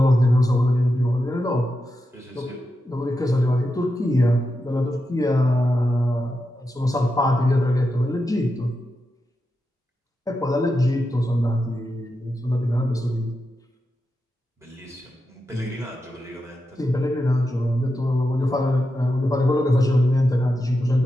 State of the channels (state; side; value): normal; both; correlation 0.88